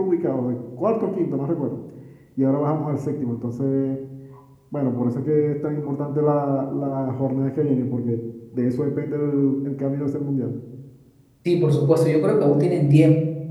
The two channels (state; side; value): identical; both; correlation 1.00